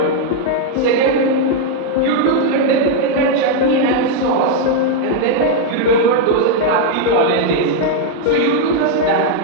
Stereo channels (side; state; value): both; different; correlation 0.00